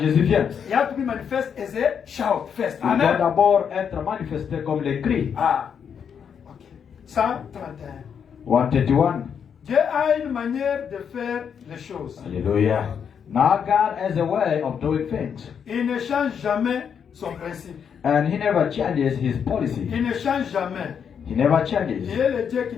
vient, you have to be manifest as a shout first. il doit Amen. d'abord être manifesté comme les cris. Ah, ok. 131. 131. Dieu a une manière de faire les choses. Hallelujah. Now God has a way of doing things. Il ne change jamais son principe. And he never changes his policy. Il ne change jamais. He never Il changes. est le Dieu qui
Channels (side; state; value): right; quieter; 7.4 dB